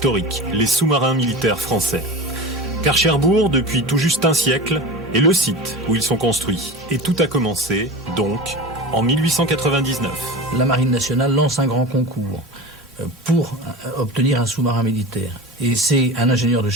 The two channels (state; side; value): normal; both; correlation 0.30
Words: les sous-marins militaires français. Car Cherbourg, depuis tout juste un siècle, est le site où ils sont construits. Et tout a commencé, donc, en 1899. La Marine nationale lance un grand concours pour obtenir un sous-marin militaire. Et c'est un ingénieur de